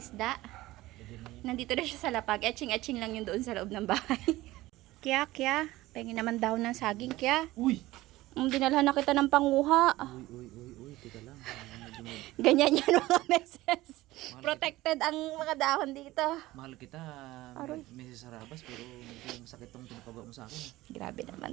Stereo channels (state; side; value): quieter; left; 17.8 dB